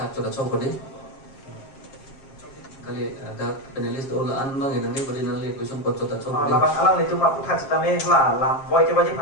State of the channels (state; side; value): late; right; 7.5 ms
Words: coba coba deh kali ada panelis dola an bang yang nanti beri nangli kuson pot coba coba deh labang alang itu mak putat sitame la lam boy ke wajib